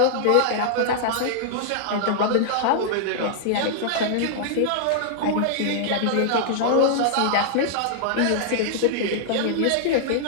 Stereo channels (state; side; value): different; both; correlation -0.01